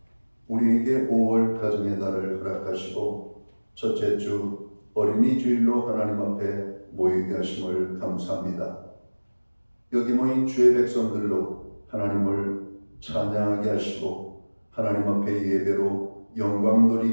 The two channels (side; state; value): both; inverted; correlation -1.00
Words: 우리에게 5월 가정의 달을 허락하시고 첫째 주 어린이 주일로 하나님 앞에 모이게 하심을 감사합니다. 여기 모인 주의 백성들로 하나님을 찬양하게 하시고 하나님 앞에 예배로 영광